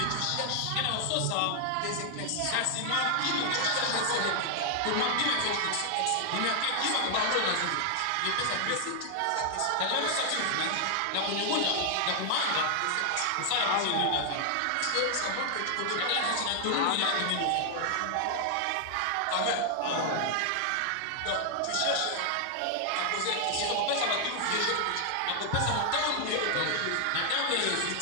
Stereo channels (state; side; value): different; both; correlation 0.00